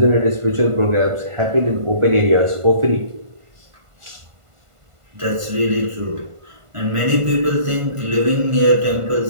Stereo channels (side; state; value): left; late; 1.5 ms